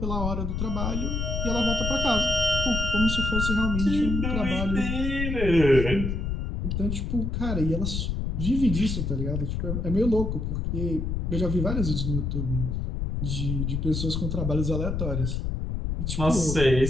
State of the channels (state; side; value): noise; left; rumble, 1 dB below the sound